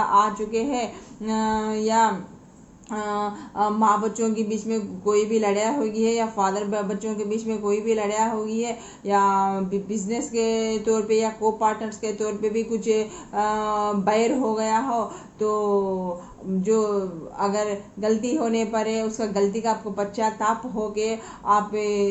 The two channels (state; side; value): identical; both; correlation 1.00